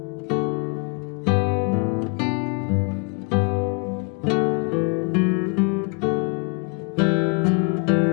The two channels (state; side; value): quieter; right; 35.8 dB